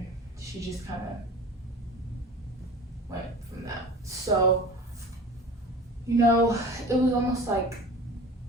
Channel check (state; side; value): normal; both; correlation 0.38